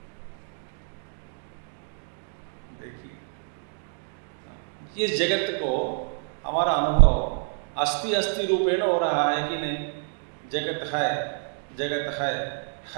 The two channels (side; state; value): left; silent; digital silence